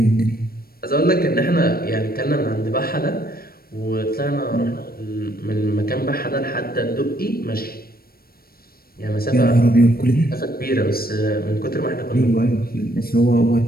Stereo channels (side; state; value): right; late; 0.44 ms